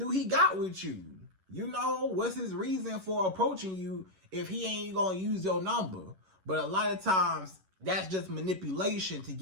he got with you? You know, what's his reason for approaching you if he ain't gonna use your number? But a lot of times, that's just manipulation to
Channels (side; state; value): left; late; 11 ms